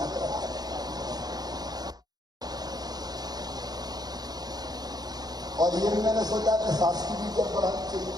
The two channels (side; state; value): left; late; 0.19 ms